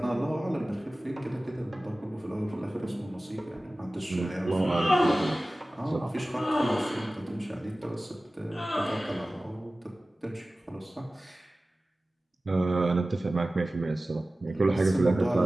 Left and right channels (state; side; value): normal; both; correlation 0.97